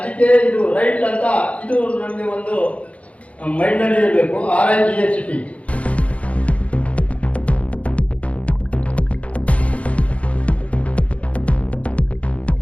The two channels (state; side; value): late; right; 0.064 ms